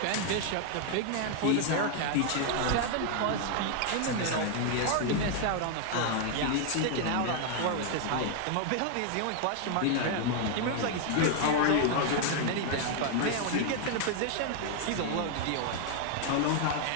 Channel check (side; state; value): both; different; correlation 0.00